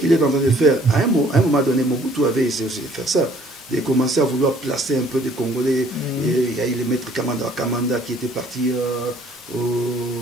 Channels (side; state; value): both; normal; correlation 0.58